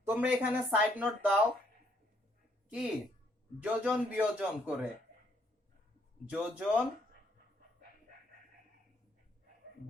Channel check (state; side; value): normal; both; correlation 0.69